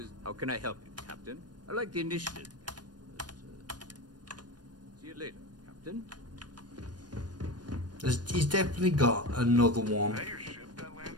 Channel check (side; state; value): left; late; 0.69 ms